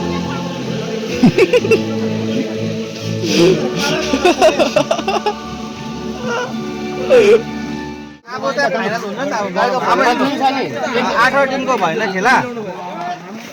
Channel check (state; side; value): identical; both; correlation 1.00